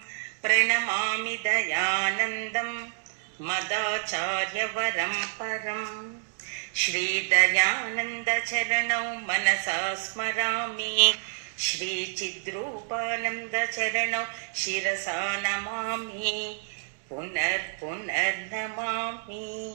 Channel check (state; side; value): silent; left; digital silence